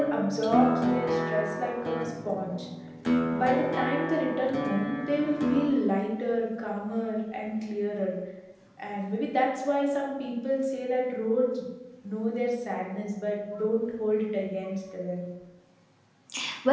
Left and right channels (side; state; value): both; identical; correlation 1.00